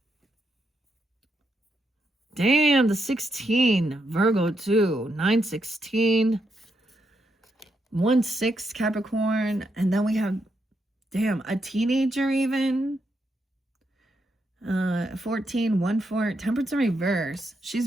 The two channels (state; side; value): normal; both; correlation 0.81